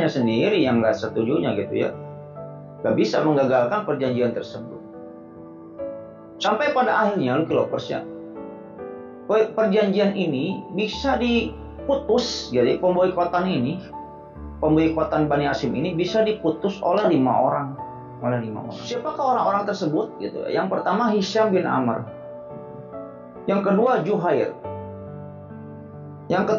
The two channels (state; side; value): identical; both; correlation 1.00